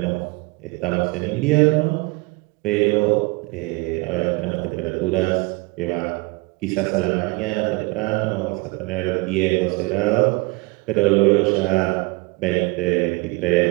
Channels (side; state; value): left; quieter; 25.5 dB